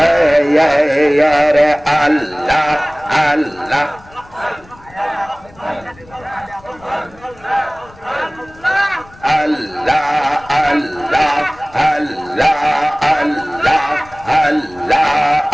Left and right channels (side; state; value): left; noise; rumble, 24 dB below the sound